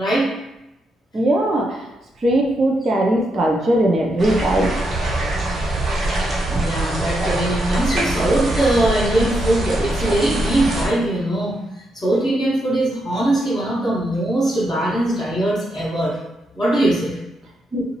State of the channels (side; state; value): both; normal; correlation 0.82